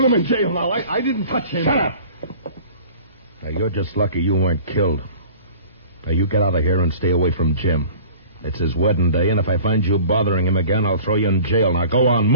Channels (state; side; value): inverted; both; correlation -0.45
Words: him in jail now. I didn't touch him. Shut up. Now, you're just lucky you weren't killed. Now, you get out of here and stay away from Jim. It's his wedding day, and if I find you bothering him again, I'll throw you in jail. Now, go on,